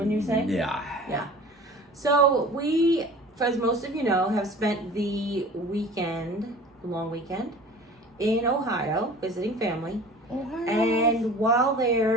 you say? Yeah. So we, as most of you know, have spent the long weekend in Ohio visiting family. And while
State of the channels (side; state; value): both; normal; correlation 0.42